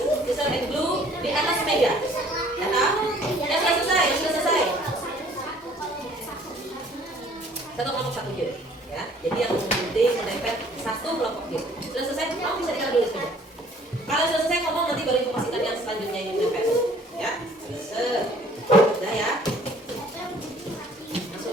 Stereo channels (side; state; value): both; normal; correlation 0.56